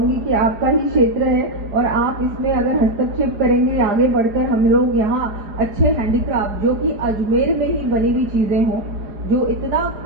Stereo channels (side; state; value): left; late; 4.9 ms